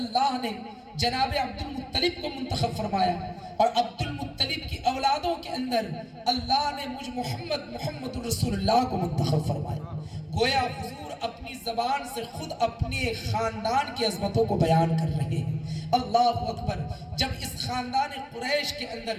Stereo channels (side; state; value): both; identical; correlation 1.00